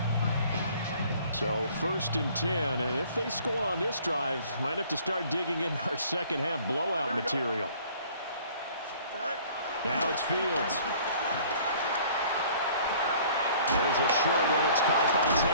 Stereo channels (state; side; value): inverted; both; correlation -0.53